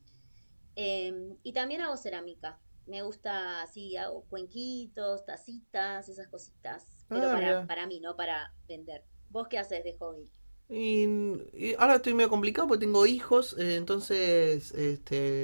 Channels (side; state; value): both; inverted; correlation -1.00